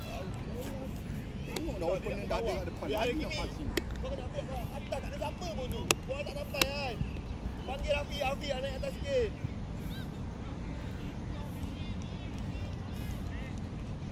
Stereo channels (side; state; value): both; identical; correlation 1.00